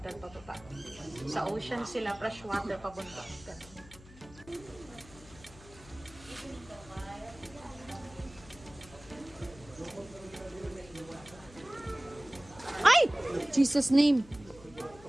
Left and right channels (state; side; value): noise; left; hum, 20 dB below the sound